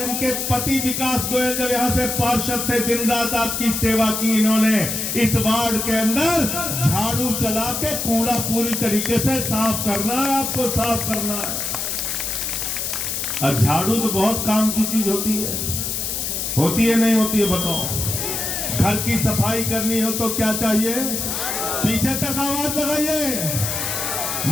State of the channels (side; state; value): left; noise; hiss, 2 dB below the sound